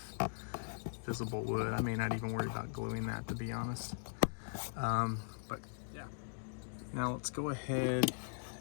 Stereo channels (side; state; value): right; silent; digital silence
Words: visible wood. I may not even worry about gluing that, to be honest. But yeah. Now let's go ahead,